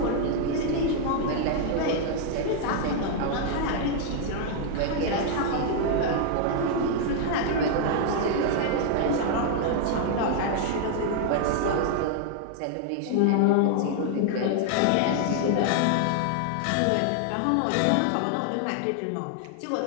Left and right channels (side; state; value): both; different; correlation 0.00